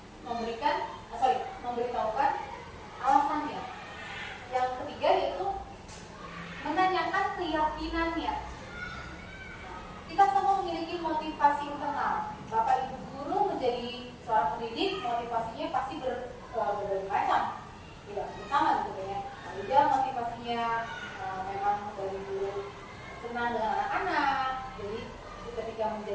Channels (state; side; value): identical; both; correlation 1.00